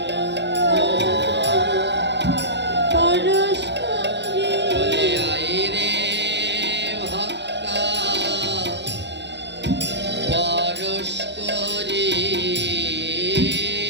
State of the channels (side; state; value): left; late; 0.51 ms